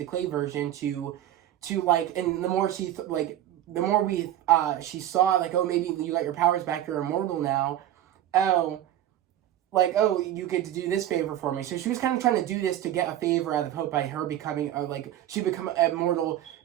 clay version to like, and the more she she saw like, oh, maybe you got your powers back, you're immortal now. Oh, like, oh, you get to do this favor for me. So she was kind of trying to do this to get a favor out of Hope by her becoming, she become immortal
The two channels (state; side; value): quieter; left; 12.2 dB